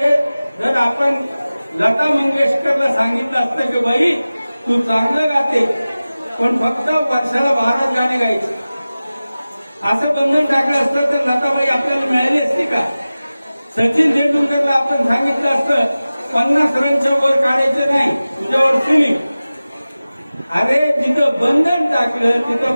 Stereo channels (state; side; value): inverted; both; correlation -0.97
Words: जर आपण लता मंगेशकरला सांगितलं असतं की बाई तू चांगलं गाते पण फक्त वर्षाला 12 गाणे गायचे, असं बंधन टाकलं असतं तर लताबाई आपल्याला मिळाली असती का? सचिन तेंडुलकरला आपण सांगितलं असतं 50 रनच्या वर काढायचं नाही, तुझ्यावर सिलिंग. अरे जिथं बंधन टाकलं तिथं